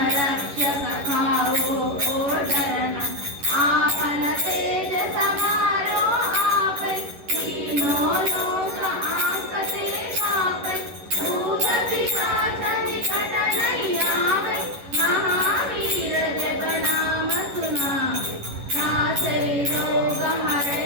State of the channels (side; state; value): left; late; 11 ms